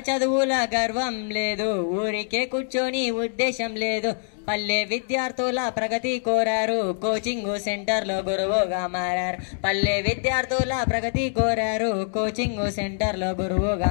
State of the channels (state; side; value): silent; right; 62 dB below the other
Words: చదువుల గర్వం లేదు, ఊరికే కూర్చొని ఉద్దేశం లేదు. పల్లె విద్యార్థుల ప్రగతి కోరారు, కోచింగ్ సెంటర్లో గురువుగా మారారు. పల్లె విద్యార్థుల ప్రగతి కోరారు, కోచింగ్ సెంటర్లో